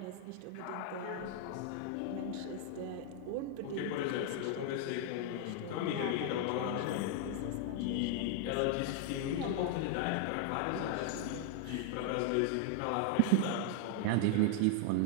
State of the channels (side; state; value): both; different; correlation 0.00